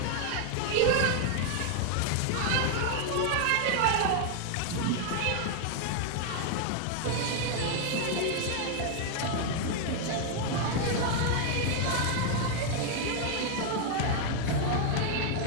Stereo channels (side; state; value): both; different; correlation 0.00